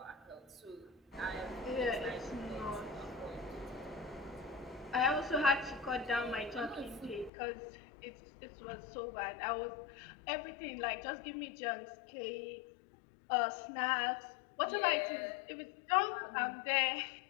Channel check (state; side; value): drops out; right; at 7.3 s